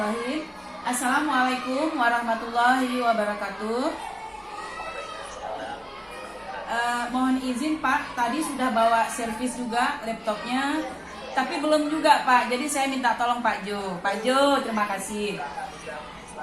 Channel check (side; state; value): both; identical; correlation 1.00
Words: Assalamualaikum warahmatullahi wabarakatuh. Mohon izin Pak, tadi sudah bawa servis juga laptopnya, tapi belum juga Pak. Jadi saya minta tolong Pak Jo. Pak Jo, terima kasih.